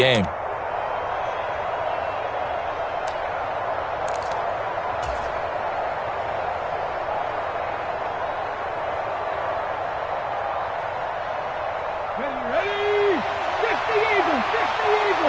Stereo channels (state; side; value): identical; both; correlation 1.00